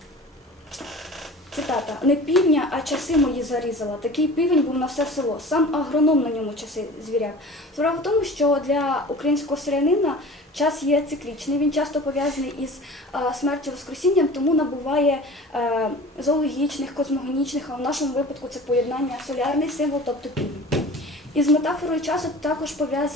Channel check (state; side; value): normal; both; correlation 0.40